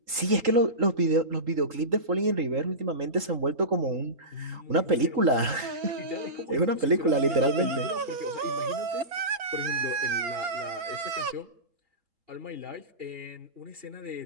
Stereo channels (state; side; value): late; left; 3.8 ms